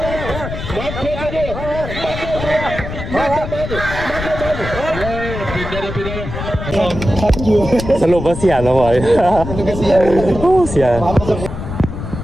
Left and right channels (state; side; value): noise; left; rumble, 7 dB below the sound